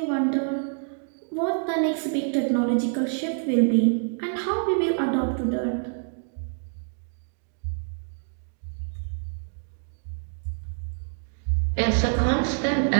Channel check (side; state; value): left; silent; digital silence